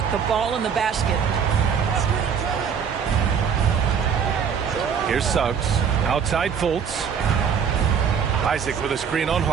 the ball in the basket. Here's Suggs. Outside Fultz. Isaac with a screen on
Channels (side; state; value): left; quieter; 7.0 dB